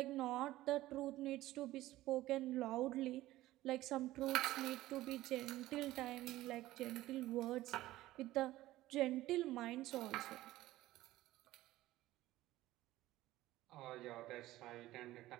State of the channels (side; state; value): left; quieter; 16.1 dB